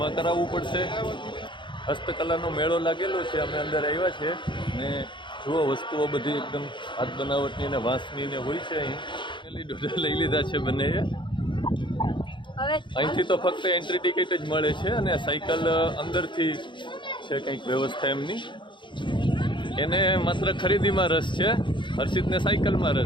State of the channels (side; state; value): right; late; 0.23 ms